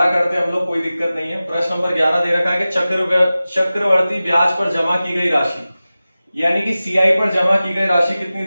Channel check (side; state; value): both; inverted; correlation -0.96